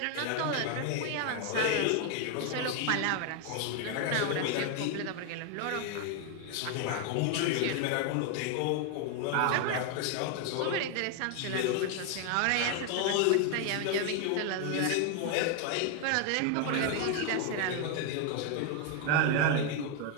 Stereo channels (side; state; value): both; different; correlation 0.00